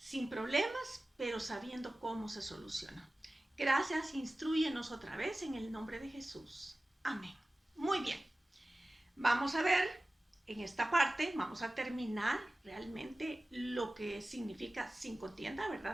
problemas, pero sabiendo cómo se soluciona. Gracias, instrúyenos otra vez en el nombre de Jesús. Amén. Muy bien, vamos a ver en esta parte, vamos a terminar realmente lo que significa sin contienda,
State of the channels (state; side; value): normal; both; correlation 0.97